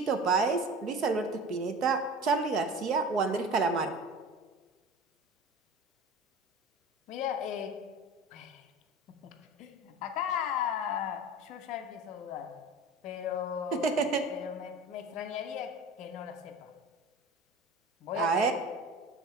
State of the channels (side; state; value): both; normal; correlation 0.36